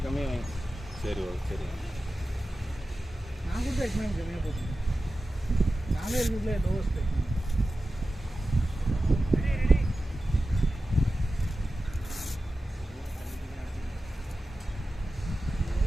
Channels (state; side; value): normal; both; correlation 0.94